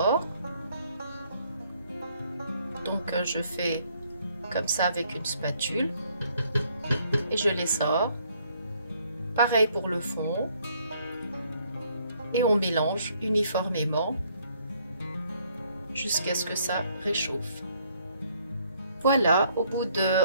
Donc, je fais comme ça avec une spatule et je les sors. Pareil pour le fond. Et on mélange uniformément jusqu'à ce que ça réchauffe. Voilà, au bout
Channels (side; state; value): both; inverted; correlation -0.66